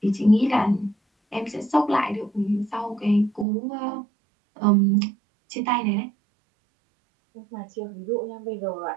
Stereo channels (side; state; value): left; drops out; at 3.5 s